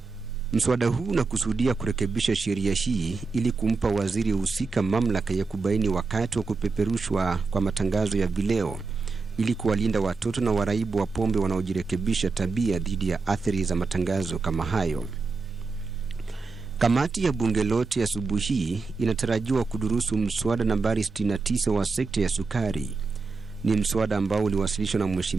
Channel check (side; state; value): left; quieter; 4.2 dB